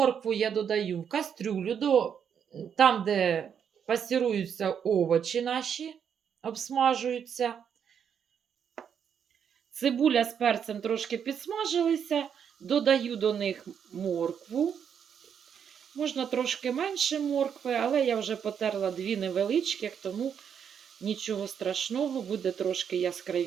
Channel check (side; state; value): left; quieter; 7.8 dB